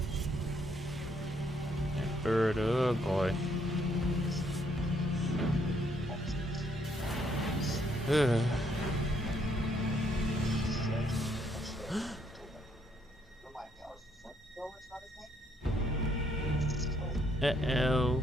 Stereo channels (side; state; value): both; normal; correlation 0.71